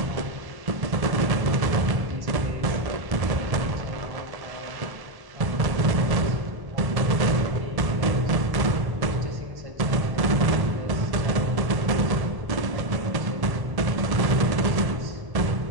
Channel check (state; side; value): late; left; 1.1 ms